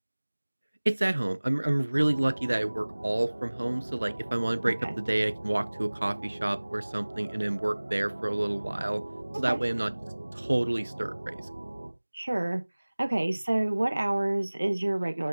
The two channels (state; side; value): inverted; both; correlation -1.00